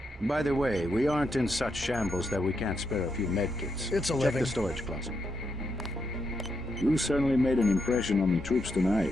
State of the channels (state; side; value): normal; both; correlation 0.82